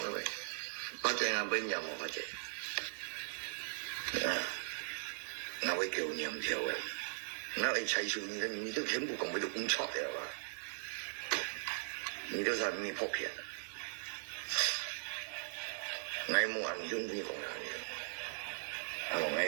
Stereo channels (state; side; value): silent; left; digital silence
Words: người phát triển ở bên nhà một phát triển nó với kiểu niệm theo ấy nó ấy chạy xuống你都全部講俾到咁錯嘅話，你都係咩破片？我冇人中意講人嘅，我